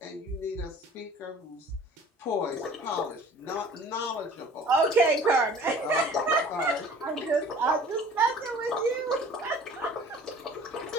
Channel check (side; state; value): both; normal; correlation 0.48